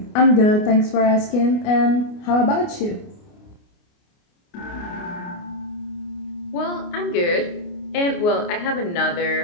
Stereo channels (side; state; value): right; late; 29 ms